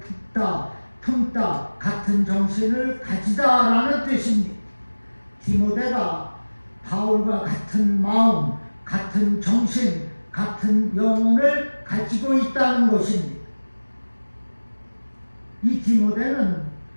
품다 같은 정신을 가지다라는 뜻입니다. 디모데가 바울과 같은 마음, 같은 정신, 같은 영혼을 가지고 있다는 것입니다. 이 디모데는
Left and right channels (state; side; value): inverted; both; correlation -1.00